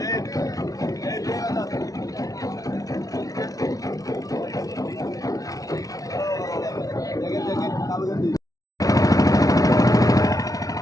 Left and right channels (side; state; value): right; late; 0.18 ms